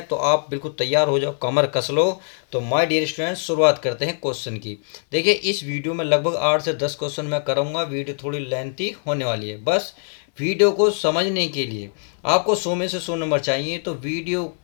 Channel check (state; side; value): silent; right; 64 dB below the other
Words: तो आप बिल्कुल तैयार हो जाओ, कमर कस लो। तो माय डियर स्टूडेंट्स, शुरुआत करते हैं क्वेश्चन की। देखिए, इस वीडियो में लगभग 8 से 10 क्वेश्चन मैं करूँगा। वीडियो थोड़ी लेंथी होने वाली है। बस वीडियो को समझने के लिए आपको 100 में से 100 नंबर चाहिए, तो वीडियो